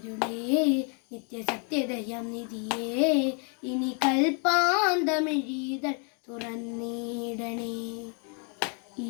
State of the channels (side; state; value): right; quieter; 39.0 dB